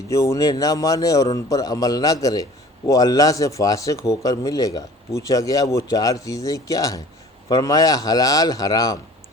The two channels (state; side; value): normal; both; correlation 0.47